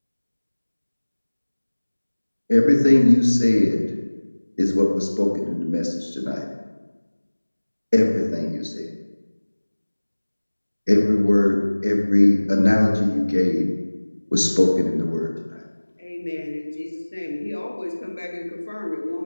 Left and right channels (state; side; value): inverted; both; correlation -1.00